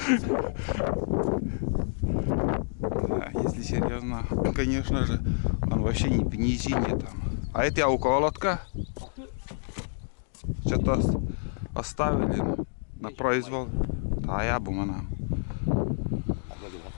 Да, если серьезно, конечно же, он вообще не в низине там. А это я около лодка. Что-то оставили на произвол. Да, я бы мана.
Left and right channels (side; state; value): right; silent; digital silence